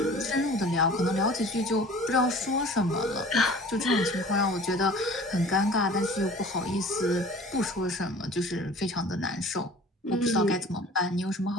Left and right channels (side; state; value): both; normal; correlation 0.46